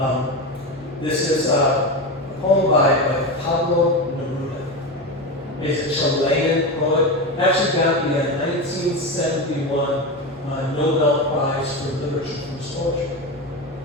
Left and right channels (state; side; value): normal; both; correlation 0.19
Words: This is a poem by Pablo Neruda. He's a Chilean poet. Actually got the 1971 Nobel Prize for Literature for his poetry.